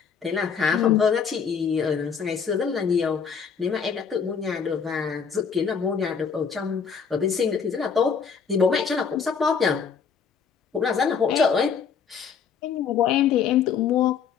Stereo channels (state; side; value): quieter; right; 6.5 dB